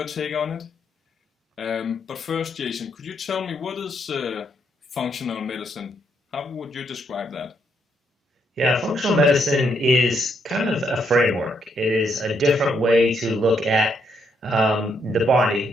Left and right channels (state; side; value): normal; both; correlation 0.75